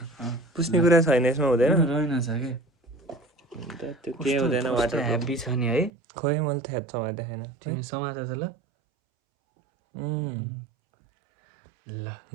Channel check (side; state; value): left; drops out; at 5.9 s